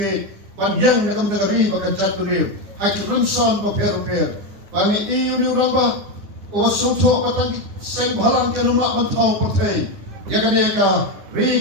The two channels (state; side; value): late; left; 9.7 ms